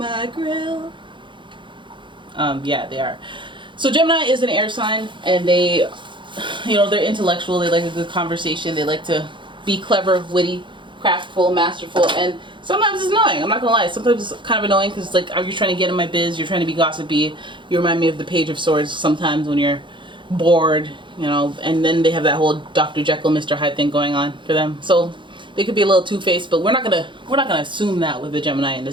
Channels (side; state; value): left; late; 0.23 ms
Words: grill? Yeah, they are. So Gemini is an air sign, and they, they're intellectual. They like a good conversation. They like to be clever, witty, craftful, masterful, and sometimes it's annoying. I'm not gonna lie. Sometimes it's kind of annoying because it's like, are you trying to get in my biz? You're trying to be gossipy. You remind me of the Page of Swords sometimes when you're bored, and then they have that whole Dr. Jekyll, Mr. Hyde thing going on for them. So they could be a little two-faced, but we're not gonna assume that with the Gemini in